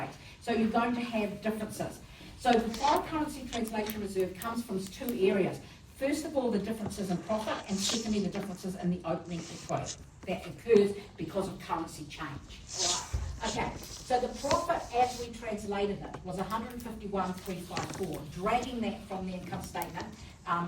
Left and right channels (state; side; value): identical; both; correlation 1.00